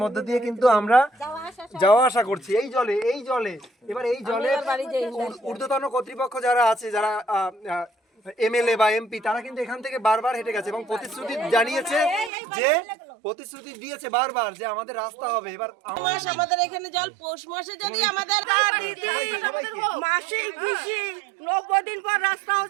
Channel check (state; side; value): drops out; left; at 12.3 s